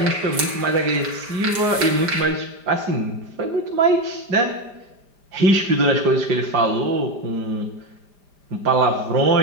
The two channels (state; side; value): late; left; 5.0 ms